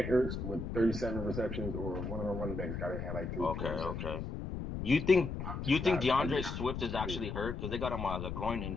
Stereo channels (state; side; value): noise; left; rumble, 5 dB below the sound